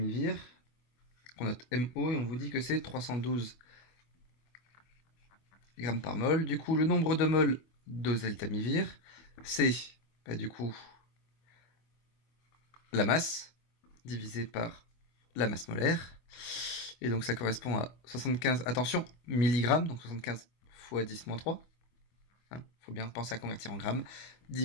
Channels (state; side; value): late; right; 24 ms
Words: qu'on note MO, et on vous dit que c'est 312 grammes par mol. Du coup, le nombre de moles d'oseltamivir, c'est du coup la masse divisé par la masse molaire. Et donc ça correspond à 75, attention, milligrammes, donc 75 fois 10-3. Faut bien penser à convertir en grammes,